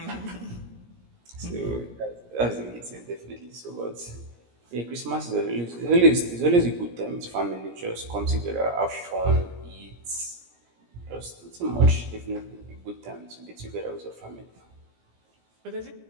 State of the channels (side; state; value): left; late; 17 ms